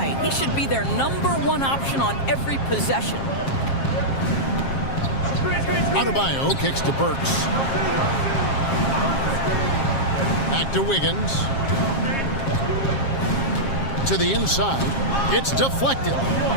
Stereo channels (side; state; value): right; late; 7.4 ms